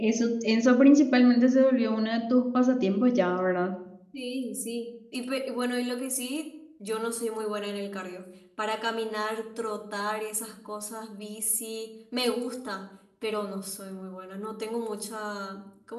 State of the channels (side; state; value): both; identical; correlation 1.00